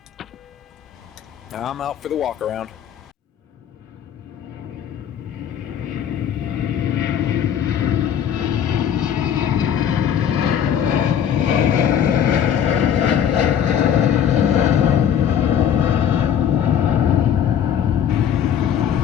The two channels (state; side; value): quieter; right; 9.0 dB